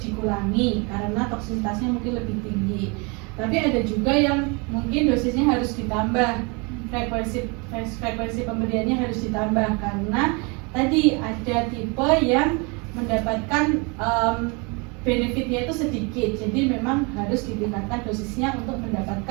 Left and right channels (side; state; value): left; quieter; 30.6 dB